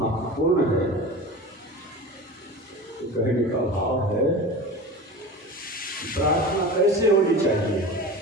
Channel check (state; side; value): normal; both; correlation 0.32